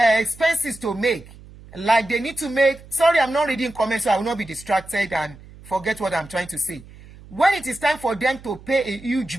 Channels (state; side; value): noise; right; hum, 20 dB below the sound